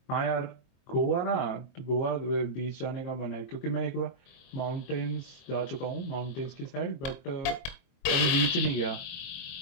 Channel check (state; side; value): late; right; 23 ms